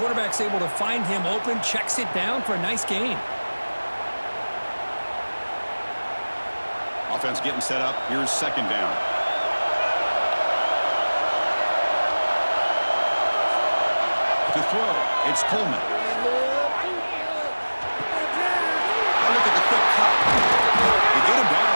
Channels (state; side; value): inverted; both; correlation -1.00